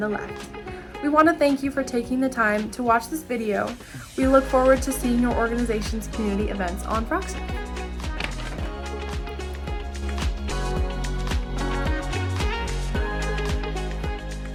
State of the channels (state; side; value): identical; both; correlation 1.00